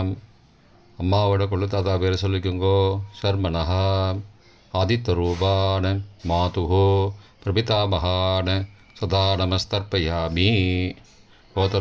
அம்மாவோட கொள்ளு தாத்தா பேரை சொல்லிக்கோங்கோ ஷர்மனஹா. ஆதித்தரூபான மாதுஹோ பிரபிதாமகான சதா நமஸ்தர்ப்பயாமி.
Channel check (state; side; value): identical; both; correlation 1.00